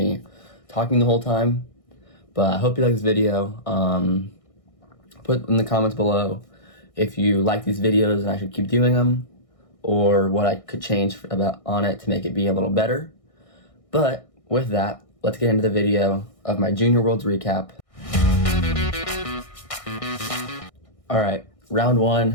talking the whole time. But I hope you like this video. Put in the comments below if you like these videos and I should keep doing them, or what I could change on it to make it be a little better. But with that, let's get into the video of my Junior Worlds recap. Alright, round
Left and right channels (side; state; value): right; late; 1.6 ms